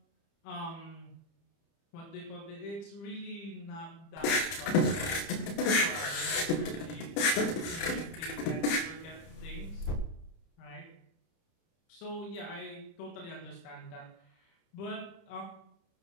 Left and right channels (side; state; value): right; late; 30 ms